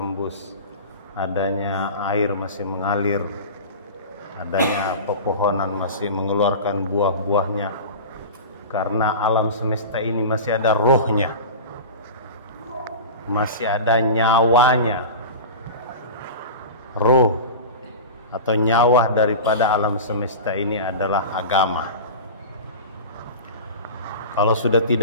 adanya air masih mengalir, adanya pepohonan masih mengeluarkan buah-buahnya, karena alam semesta ini masih ada rohnya, masih ada nyawanya. Roh atau nyawa daripada alam semesta ini adalah agama. Kalau sudah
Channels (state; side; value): inverted; both; correlation -0.31